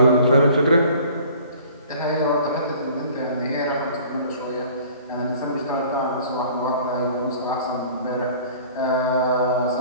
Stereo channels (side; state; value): both; inverted; correlation -0.49